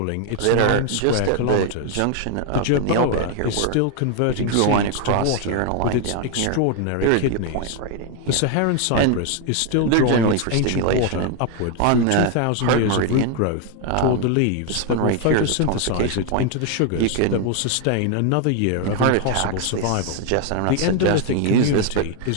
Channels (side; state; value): both; different; correlation 0.01